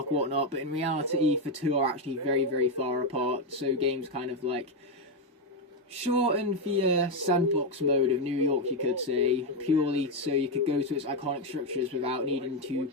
or whatnot, but in reality the two are actually very, very far apart, so games kind of, like, shorten the sandbox mode of New York, you could say, purely so you could go to its iconic structures without needing to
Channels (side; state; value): both; normal; correlation 0.06